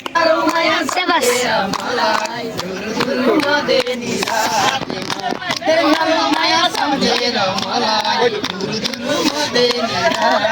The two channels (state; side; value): identical; both; correlation 1.00